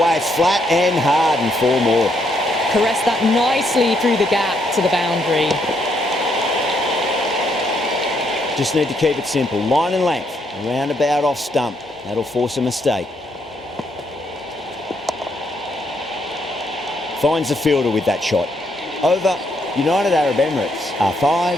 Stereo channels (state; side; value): normal; both; correlation 0.74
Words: It's flat and hard, and 4 more. Caress that nicely through the gap to the boundary. Just need to keep it simple. Line and length. Roundabout off stump. That'll force a mistake. Finds the fielder with that shot. Over. United Arab Emirates are